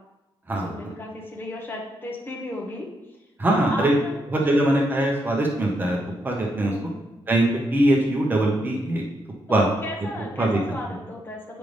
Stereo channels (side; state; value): both; normal; correlation 0.79